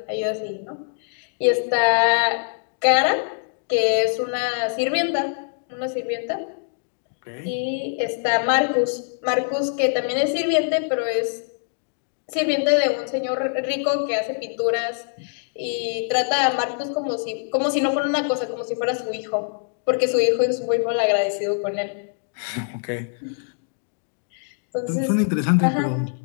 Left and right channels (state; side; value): silent; right; digital silence